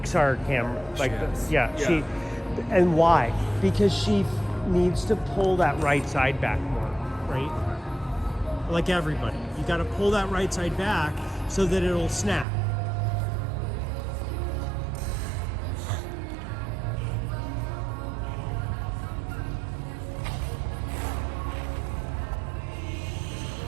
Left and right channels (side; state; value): left; drops out; at 12.5 s